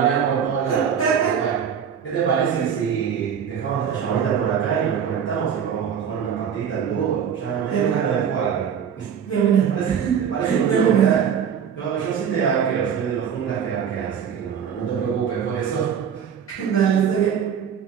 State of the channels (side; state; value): left; quieter; 7.8 dB